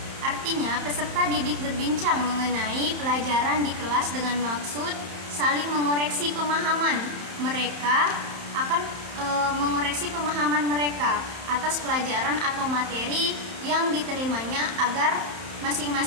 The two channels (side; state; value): left; late; 31 ms